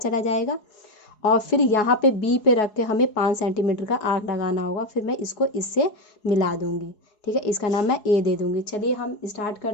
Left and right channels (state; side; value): late; right; 4.7 ms